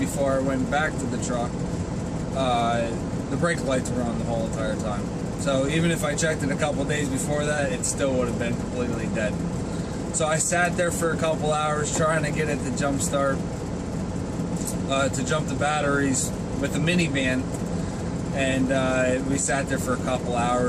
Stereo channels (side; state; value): both; identical; correlation 1.00